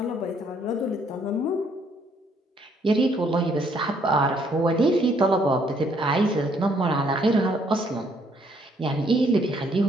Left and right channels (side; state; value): both; normal; correlation 0.67